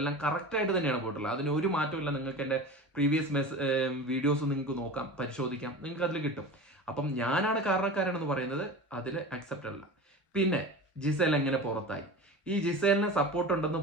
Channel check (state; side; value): normal; both; correlation 0.32